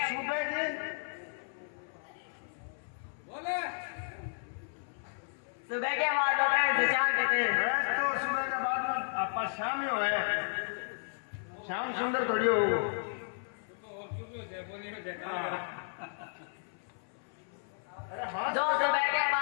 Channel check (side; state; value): right; silent; 55 dB below the other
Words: सुबह की बोले सुबह के बाद होता है उसे शाम कहते हैं। बस तो सुबह के बाद में आपका शाम ही हो है। शाम सुंदर थोड़ी हो। तो और क्यों क्यों है बोली में देखा अरे हाँ जो सुबह के